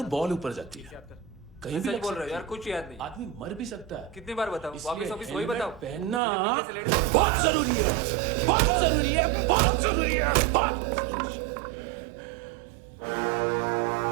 बॉल ऊपर जाती है। कहीं भी बोल रहे हो यार, कुछ याद नहीं। आदमी मर भी सकता है। कितनी बार बताऊं? वापिस वापिस वही बताओ। पहनना पीछे से लेट जाओ। बहुत जरूरी है, बहुत जरूरी है, बहुत जरूरी है, बहुत।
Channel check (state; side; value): drops out; left; at 6.2 s